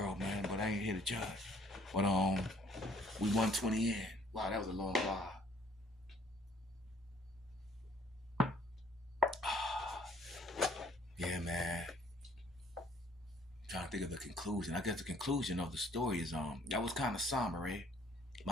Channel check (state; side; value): normal; both; correlation 0.59